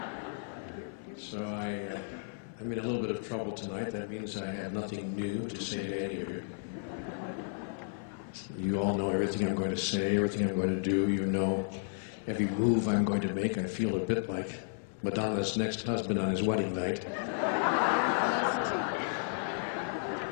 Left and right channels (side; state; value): right; silent; 56 dB below the other